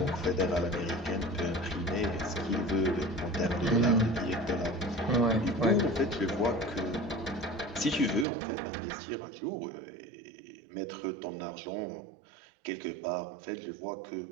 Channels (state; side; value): drops out; left; at 8.2 s